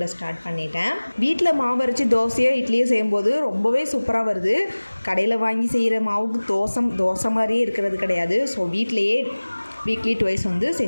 ஸ்டார்ட் பண்ணிட்டேன். வீட்டில் மாவு அரைச்சி தோசையோ இட்லியோ செய்யும்போது ரொம்பவே சூப்பராக வருது. கடையில் வாங்கி செய்கிற மாவுக்கு தோசை மாதிரியே இருக்கிறது கிடையாது. ஸோ வீட்டிலையே வீக்லி ட்வைஸ் வந்து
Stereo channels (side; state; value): both; inverted; correlation -1.00